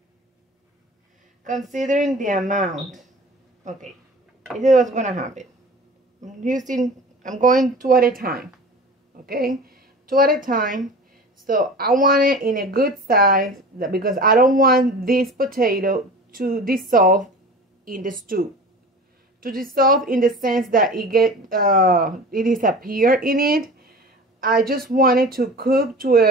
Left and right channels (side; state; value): both; normal; correlation 0.38